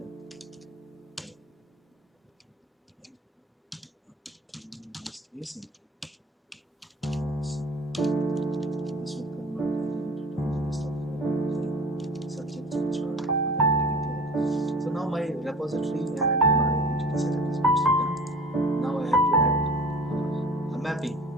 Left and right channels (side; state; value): both; normal; correlation 0.40